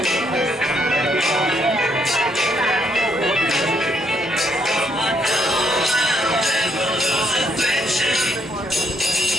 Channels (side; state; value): both; normal; correlation 0.73